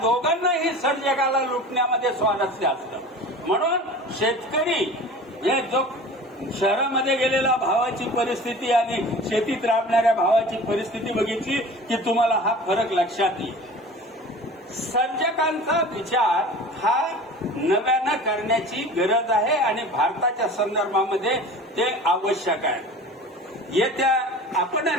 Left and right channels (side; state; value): both; normal; correlation 0.39